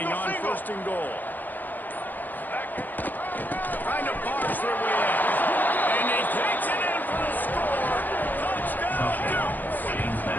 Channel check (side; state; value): right; late; 0.085 ms